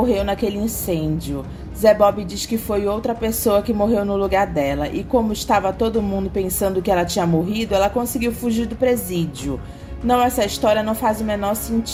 naquele incêndio. Zé Bob diz que foi outra pessoa que morreu no lugar dela, e como estava todo mundo pensando que ela tinha morrido, ela conseguiu fugir do presídio. Não, essa história não faz o menor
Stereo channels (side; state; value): both; identical; correlation 1.00